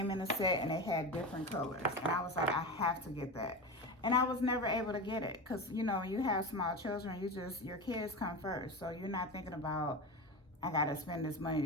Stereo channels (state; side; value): normal; both; correlation 0.24